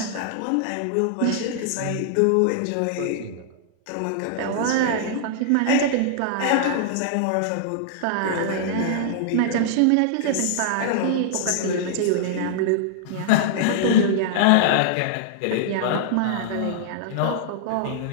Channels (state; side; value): different; both; correlation -0.01